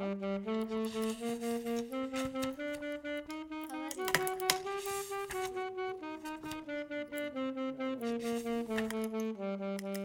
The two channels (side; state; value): both; identical; correlation 1.00